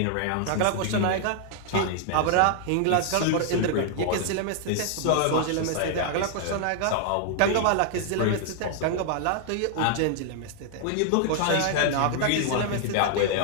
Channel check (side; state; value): both; different; correlation 0.00